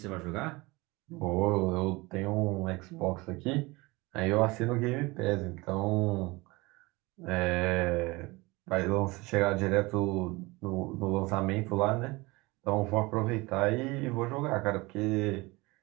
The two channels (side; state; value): left; quieter; 23.3 dB